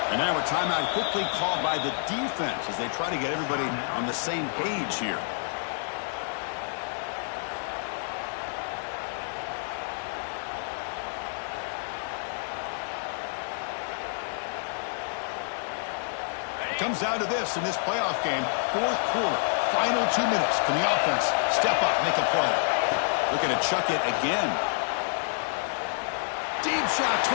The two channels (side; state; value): right; silent; digital silence